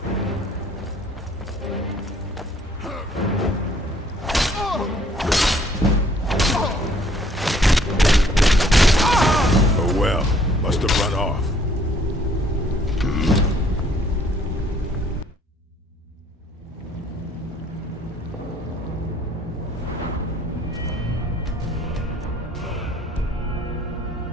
Oh well, must have run off.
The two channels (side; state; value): both; normal; correlation 0.61